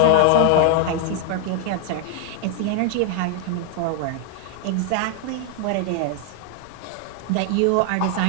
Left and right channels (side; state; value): both; different; correlation 0.00